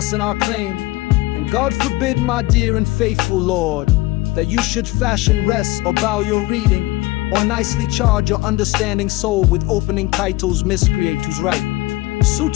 in our claim. And God forbid, my dear and faithful Lord, that you should fashion wrest or bow your reading, or nicely charge your understanding soul with opening titles miscreate who's right.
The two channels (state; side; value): quieter; right; 19.4 dB